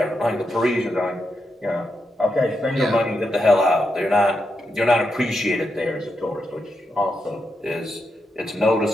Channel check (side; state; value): both; normal; correlation 0.84